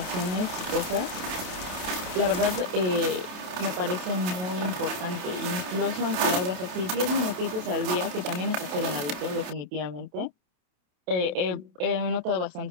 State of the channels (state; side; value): late; left; 28 ms